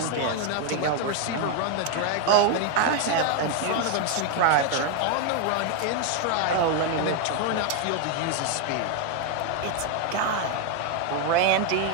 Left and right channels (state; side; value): different; both; correlation 0.01